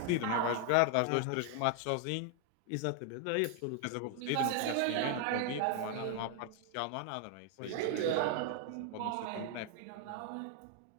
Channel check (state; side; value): different; both; correlation 0.00